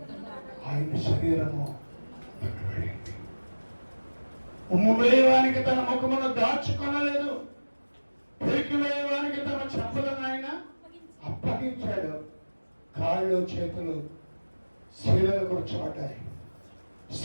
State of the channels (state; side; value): inverted; both; correlation -1.00